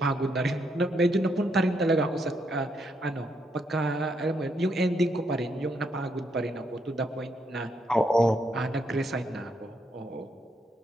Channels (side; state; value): both; normal; correlation 0.76